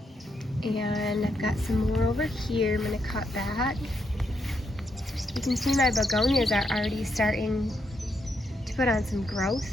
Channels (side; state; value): both; normal; correlation 0.79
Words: And I've got some more over here I'm gonna cut back. You can see my begonias are already starting to put on some growth.